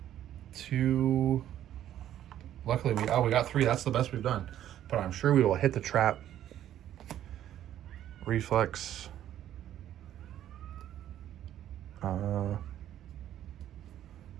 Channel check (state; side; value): quieter; left; 11.6 dB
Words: 2. Luckily, we got 3. That's the best we've done. But I'm sure we will hit the trap. Reflex. All